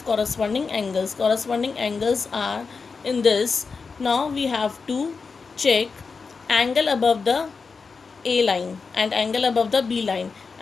corresponding angles. Corresponding angles are in this. Now we have to check angle above the A line and angle above the B line.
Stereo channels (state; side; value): quieter; right; 4.9 dB